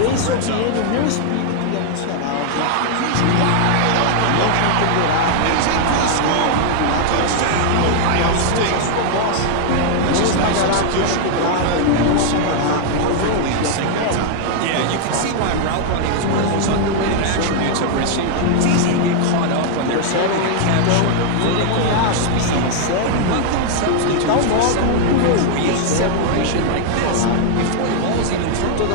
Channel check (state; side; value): different; both; correlation 0.00